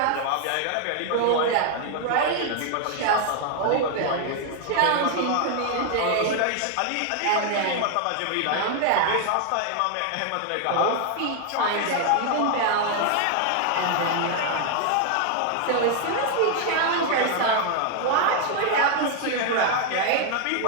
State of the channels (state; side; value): different; both; correlation 0.00